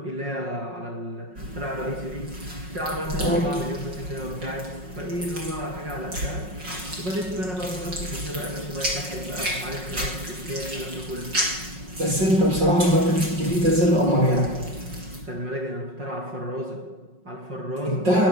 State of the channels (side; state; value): left; late; 5.5 ms